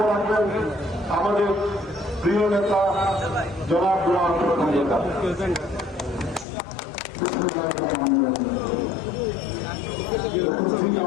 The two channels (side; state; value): right; drops out; at 6.5 s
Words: রাখবেন আমাদের প্রিয় নেতা জনাব গোলাম প্রধান নেতা। উপস্থিত